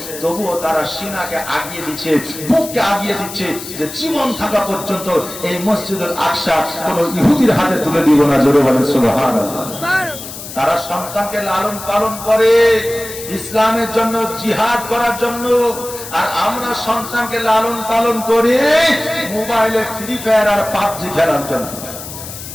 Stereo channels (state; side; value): noise; left; hiss, 11 dB below the sound